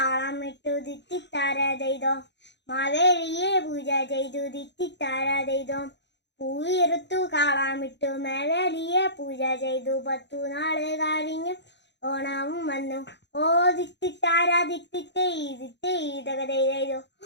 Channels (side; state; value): right; late; 0.51 ms